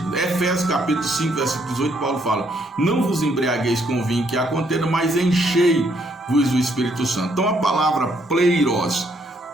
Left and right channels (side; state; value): both; normal; correlation 0.71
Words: Efésios capítulo 5, versículo 18, Paulo fala: não vos embriagueis com o vinho que há contenda, mas enchei-vos do Espírito Santo. Então a palavra pleiros,